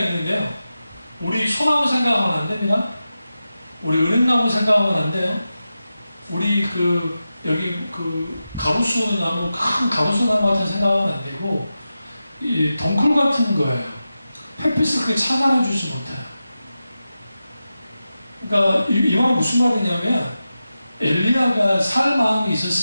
우리 소나무 생각하면 안 됩니다. 우리 은행나무 생각하면 안 돼요. 우리 여기 가로수 나무, 큰 가로수 나무 같은 생각하면 안 되고, 이 덩쿨 같은 거예요. 햇빛을 그렇게 차단해주지 못해요. 그러니까 이 말은 무슨 말이냐면, 엘리야가 살 마음이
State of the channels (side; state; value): both; inverted; correlation -0.92